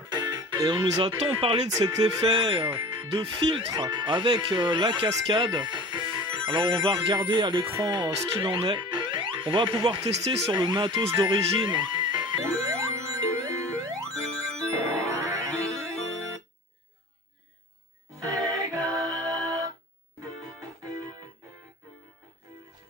Et on nous a tant parlé de cet effet de filtre avec la cascade. Alors on va regarder à l'écran ce qu'il en est. On va pouvoir tester sur le matos d'origine.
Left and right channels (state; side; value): normal; both; correlation 0.39